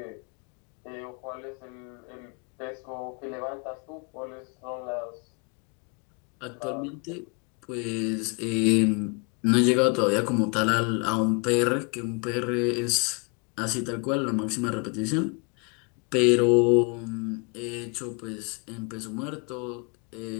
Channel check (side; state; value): right; quieter; 32.8 dB